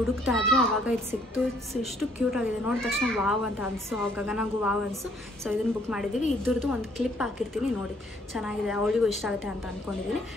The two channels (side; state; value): both; normal; correlation 0.65